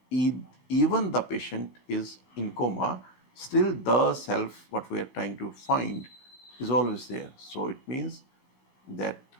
Even the patient is in coma, still the self, what we are trying to find, is always there. So it means that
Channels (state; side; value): late; right; 15 ms